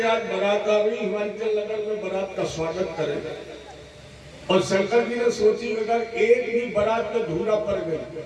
आज बारात आ रही, हिमाचल नगर में बारात का स्वागत करें। और शंकर जी ने सोची अगर एक भी बारात में धूरा पड़ गई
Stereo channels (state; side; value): identical; both; correlation 1.00